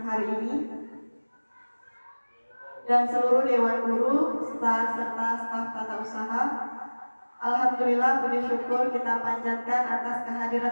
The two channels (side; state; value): both; inverted; correlation -1.00